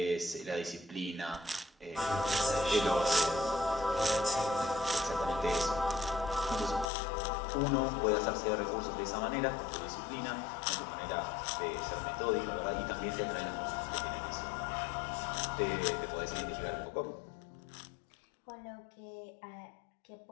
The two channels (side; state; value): right; drops out; at 6.9 s